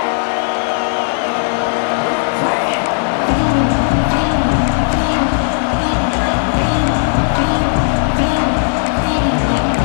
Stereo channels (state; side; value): silent; right; digital silence